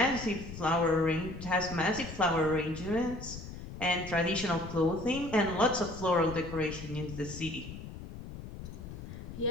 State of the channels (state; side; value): noise; left; rumble, 11 dB below the sound